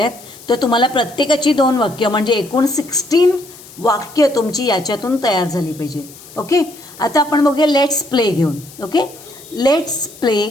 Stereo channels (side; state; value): left; noise; hiss, 20 dB below the sound